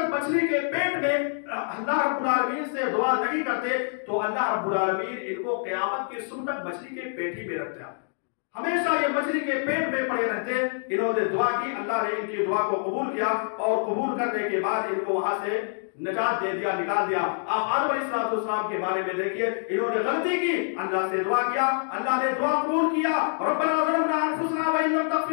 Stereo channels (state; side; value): silent; right; digital silence